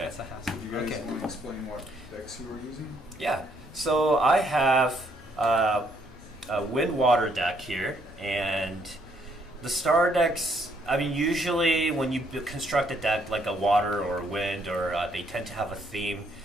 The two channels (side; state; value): both; normal; correlation 0.69